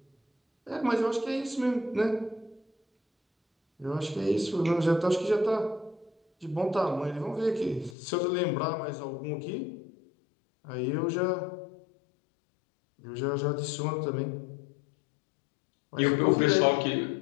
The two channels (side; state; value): right; drops out; at 8.0 s